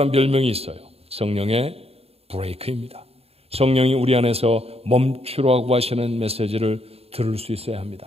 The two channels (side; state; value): left; late; 0.29 ms